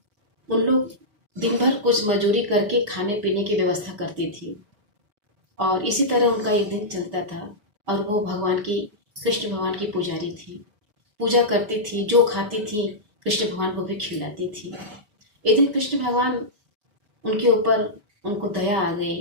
उन लोग दिन भर कुछ मजूरी करके खाने पीने की व्यवस्था करती थी और इसी तरह उनका एक दिन चलता था। और वो भगवान की कृष्ण भगवान की पुजारी थी, पूजा करती थी, जो खाती थी कृष्ण भगवान को भी खिलाती थी। एक दिन कृष्ण भगवान उनके ऊपर उनको दया आ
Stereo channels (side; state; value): left; late; 4.7 ms